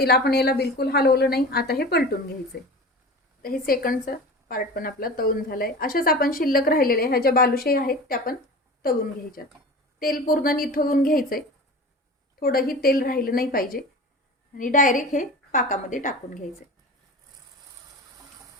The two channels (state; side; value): normal; both; correlation 0.35